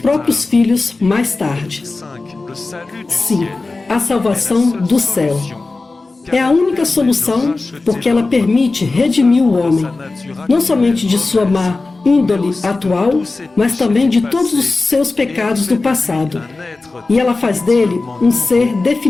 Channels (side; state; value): right; quieter; 3.5 dB